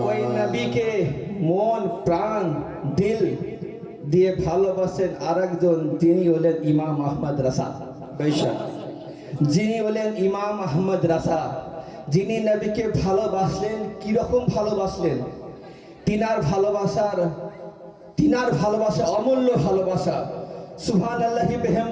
ওই নবীকে মন প্রাণ দিল দিয়ে ভালোবাসেন আরেকজন, যিনি হলেন ইমাম আহমদ রাসা। বেশক, যিনি হলেন ইমাম আহমদ রাসা, যিনি নবীকে ভালোবাসলেন। কিরকম ভালোবাসলেন? তিনার ভালোবাসা অমূল্য ভালোবাসা। সুবহানাল্লাহি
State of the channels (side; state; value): both; identical; correlation 1.00